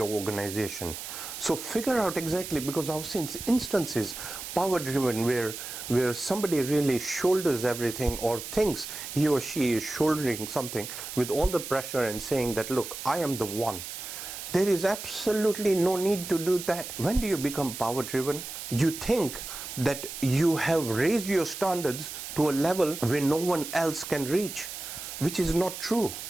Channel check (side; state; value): right; noise; hiss, 9 dB below the sound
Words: organization. So figure out exactly, because I've seen instances, power driven, where somebody really shoulders everything or thinks he or she is shouldering something with all the pressure and saying that, look, I am the one. There is absolutely no need to do that. When do you become power driven? You think that you have raised your standards to a level where no one else can reach, which is not true.